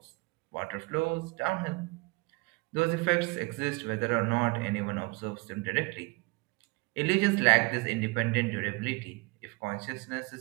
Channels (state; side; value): quieter; left; 26.2 dB